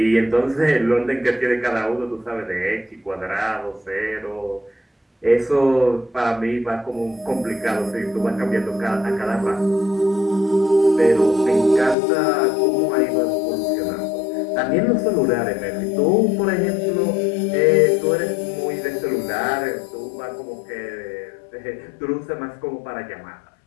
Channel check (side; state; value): right; drops out; at 12.0 s